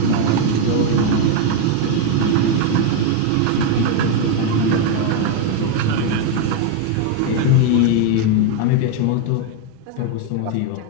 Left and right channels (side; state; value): both; different; correlation 0.01